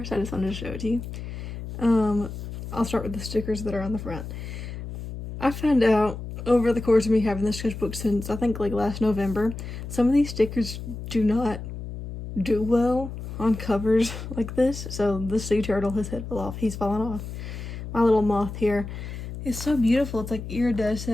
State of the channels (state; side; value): noise; left; hum, 9 dB below the sound